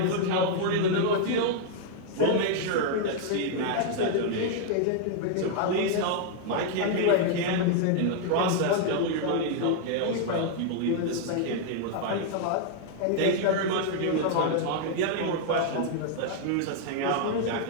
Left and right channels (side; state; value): both; different; correlation 0.00